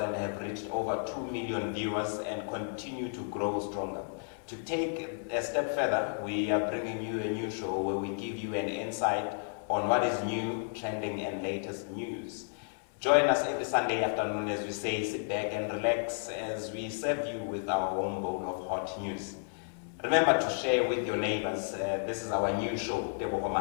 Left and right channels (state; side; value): silent; right; digital silence